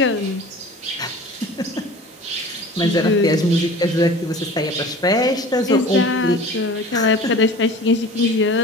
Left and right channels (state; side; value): normal; both; correlation 0.41